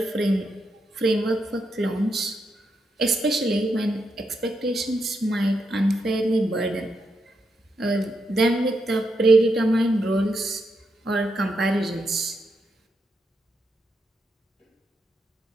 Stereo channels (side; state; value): both; normal; correlation 0.83